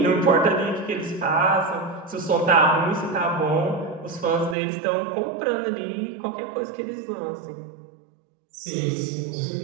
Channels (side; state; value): left; drops out; at 4.5 s